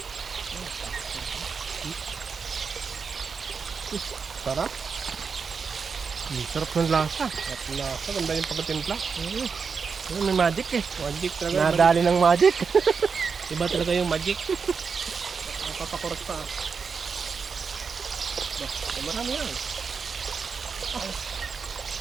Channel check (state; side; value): quieter; left; 5.5 dB